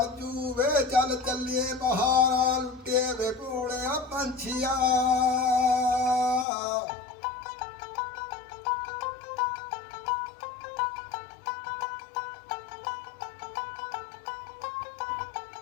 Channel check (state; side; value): drops out; right; at 6.5 s